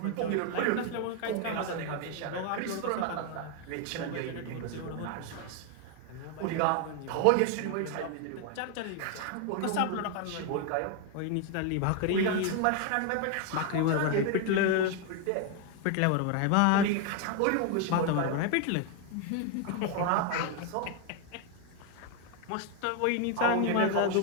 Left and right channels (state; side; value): different; both; correlation 0.01